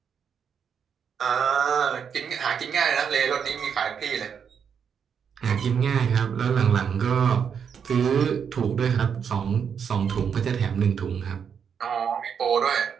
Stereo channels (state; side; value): quieter; left; 7.2 dB